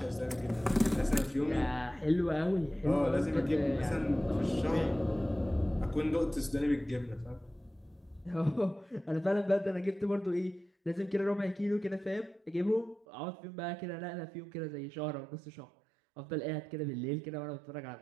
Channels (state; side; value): drops out; left; at 13.1 s